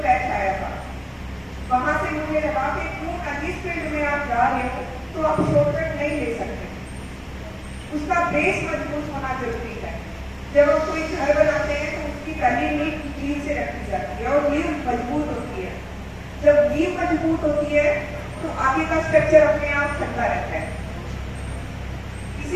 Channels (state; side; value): identical; both; correlation 1.00